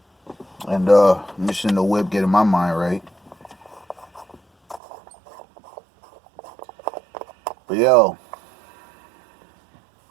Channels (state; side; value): drops out; left; at 4.8 s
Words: And I'm just in the whip getting my mind right. But yo,